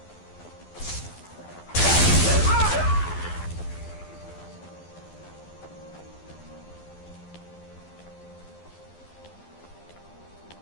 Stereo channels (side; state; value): right; late; 12 ms